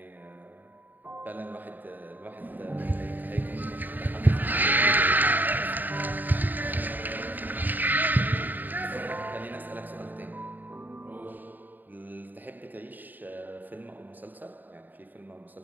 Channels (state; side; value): late; left; 0.088 ms